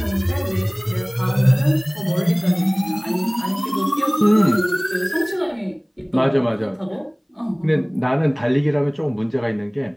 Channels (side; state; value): both; identical; correlation 1.00